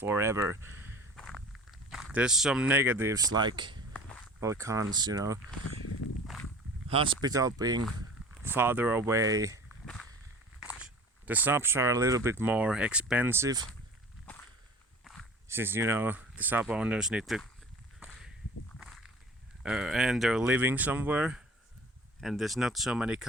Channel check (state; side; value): normal; both; correlation 0.42